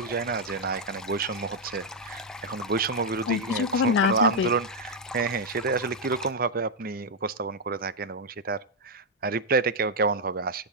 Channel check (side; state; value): both; normal; correlation -0.01